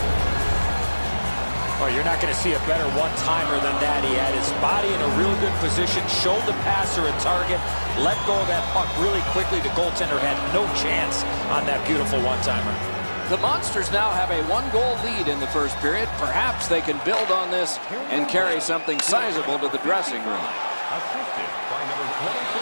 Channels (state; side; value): inverted; both; correlation -1.00